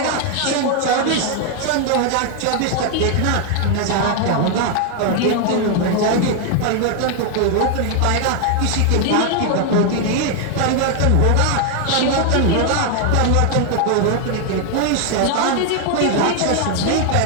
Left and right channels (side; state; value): both; different; correlation 0.01